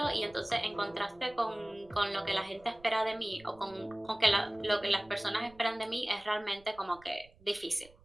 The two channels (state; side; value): noise; right; rumble, 27 dB below the sound